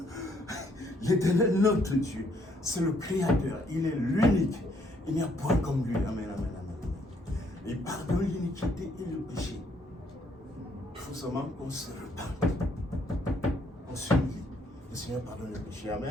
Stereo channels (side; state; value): both; normal; correlation 0.68